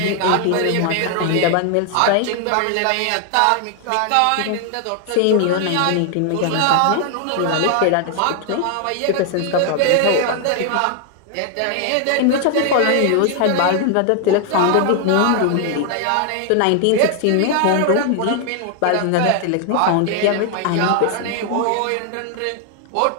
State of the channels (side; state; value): both; different; correlation 0.00